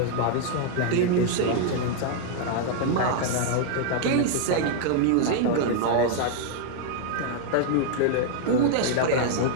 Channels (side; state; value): both; different; correlation -0.01